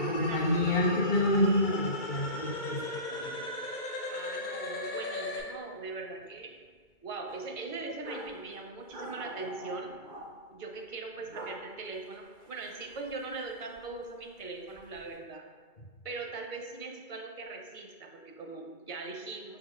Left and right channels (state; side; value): late; right; 2.3 ms